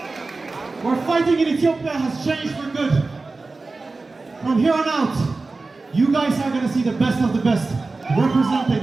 We're fighting in Ethiopia has changed for good. From here on out, you guys are going to see the best of the best representing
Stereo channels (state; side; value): quieter; left; 3.6 dB